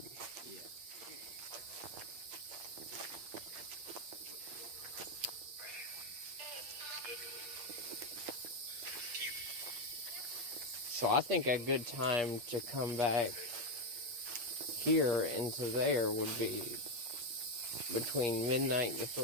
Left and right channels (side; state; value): left; late; 8.4 ms